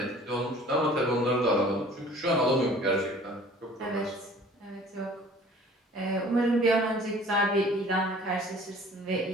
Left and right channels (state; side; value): normal; both; correlation 0.49